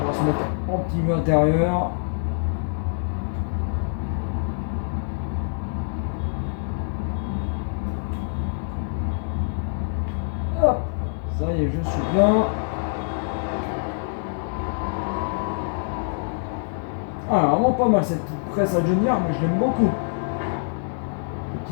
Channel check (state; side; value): silent; right; digital silence